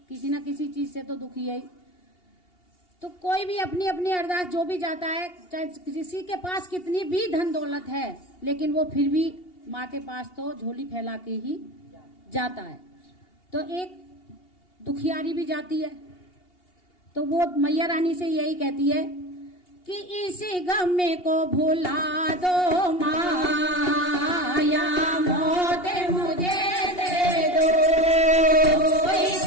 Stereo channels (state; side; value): late; right; 2.8 ms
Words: किसी ना किसी चीज से तो दुखी है ही। तो कोई भी अपनी अपनी अरदास जो भी जाता है, चाहे किसी के पास कितनी भी धन दौलत है, लेकिन वो फिर भी माँ के पास तो झोली फैला के ही जाता है। तो एक दुखियारी भी जाती है, तो वो मैया रानी से यही कहती है कि इसी गम को भुला दो माया